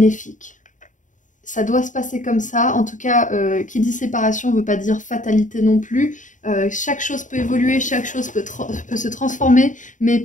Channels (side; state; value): right; late; 0.37 ms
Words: Ça doit se passer comme ça. En tout cas, qui dit séparation ne veut pas dire fatalité non plus. Chaque chose peut évoluer, chaque chose peut se transformer, mais